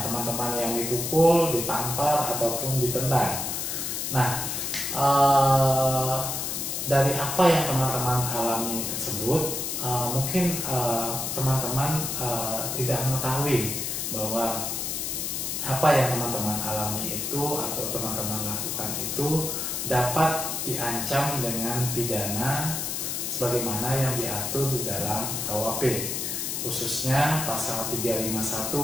teman-teman yang dipukul, ditampar, ataupun ditendang. Nah, dari apa yang teman-teman alami tersebut, mungkin teman-teman tidak mengetahui bahwa apa yang teman-teman alami itu atau teman-teman lakukan itu dapat diancam dengan pidana sebagaimana yang diatur di dalam KUHP, khususnya pasal 351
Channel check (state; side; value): noise; left; hiss, 2 dB below the sound